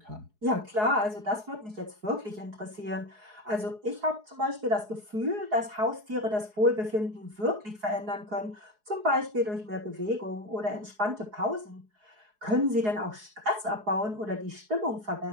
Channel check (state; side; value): late; left; 4.7 ms